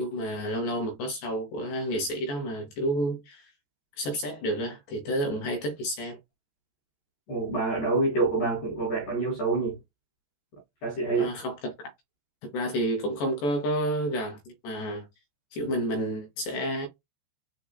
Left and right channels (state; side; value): late; right; 14 ms